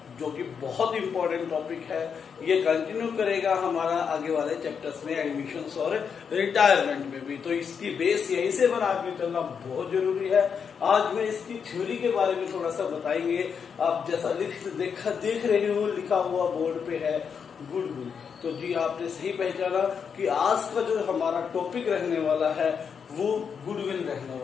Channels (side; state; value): right; quieter; 6.6 dB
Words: जो कि बहुत इंपॉर्टेंट टॉपिक है। ये कंटिन्यू करेगा हमारा आगे वाले चैप्टर्स में, एडमिशंस और रिटायरमेंट में भी। तो इसकी बेस यहीं से बना के चलना बहुत जरूरी है। आज मैं इसकी थ्योरी के बारे में थोड़ा सा बताएंगे। आप जैसा देख रहे हो लिखा हुआ बोर्ड पे है गुडविल, तो जी आपने सही पहचाना कि आज का जो हमारा टॉपिक रहने वाला है वो गुडविल